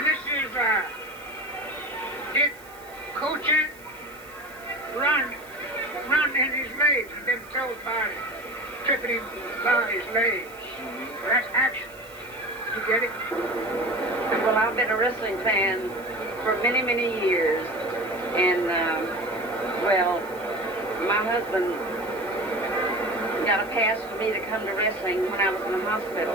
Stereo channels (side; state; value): right; noise; hiss, 23 dB below the sound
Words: this is it coaching, run in his legs and then throw his body, tripping him by his legs. So that's action. You get it? Well, I've been a wrestling fan for many, many years. And, well, my husband got a pass for me to come to wrestling when I was in the hospital.